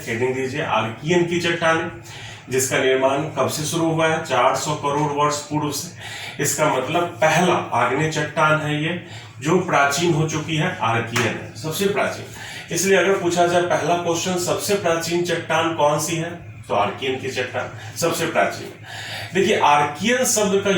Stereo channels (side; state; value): both; identical; correlation 1.00